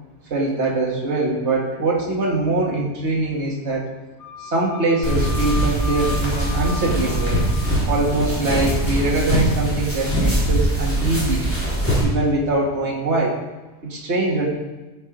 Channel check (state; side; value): normal; both; correlation 0.15